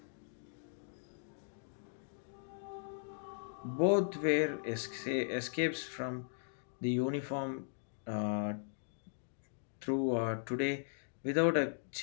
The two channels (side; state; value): right; silent; digital silence